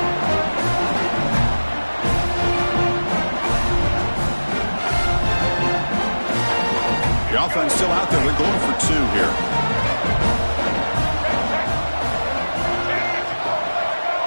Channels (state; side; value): inverted; both; correlation -1.00